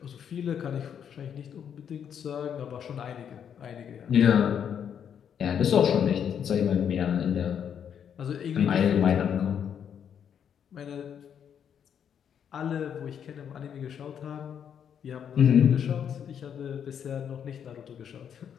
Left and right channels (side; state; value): right; quieter; 8.3 dB